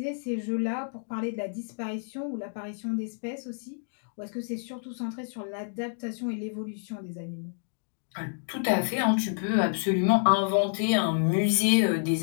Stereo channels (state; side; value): silent; right; digital silence